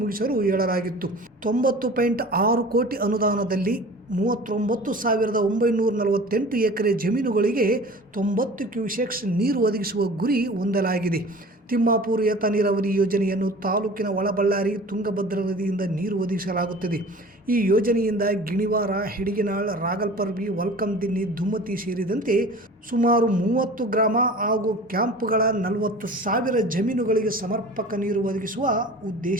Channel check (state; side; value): normal; both; correlation 0.41